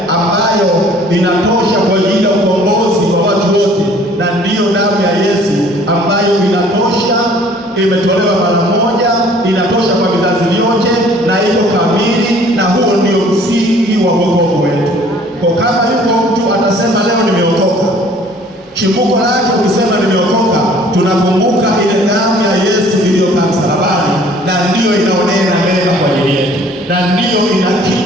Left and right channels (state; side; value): normal; both; correlation 0.54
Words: ambayo inatosha kwa ajili ya ukombozi wa watu wote, na ndiyo damu ya Yesu ambayo inatosha, imetolewa mara moja, inatosha kwa vizazi vyote na iko kamili, na huo ndio msingi wa wokovu wetu. Kwa kama yuko mtu atasema leo nimeokoka, chimbuko lake ukisema nimeokoka, tunakumbuka ile damu ya Yesu iliyokaa msalabani, na ndiyo inaonena mema kwa ajili yetu, na ndiyo ina